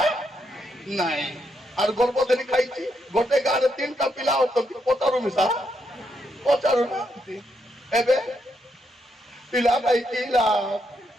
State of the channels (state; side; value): normal; both; correlation 0.79